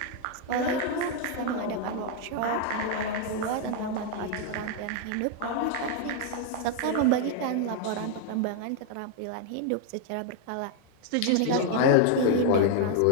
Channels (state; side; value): different; both; correlation 0.00